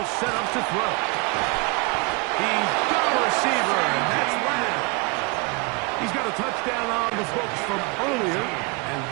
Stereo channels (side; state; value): left; quieter; 29.5 dB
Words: set up to throw. He's got a receiver, and that's Lamb. He's got a touchdown on the books from earlier, and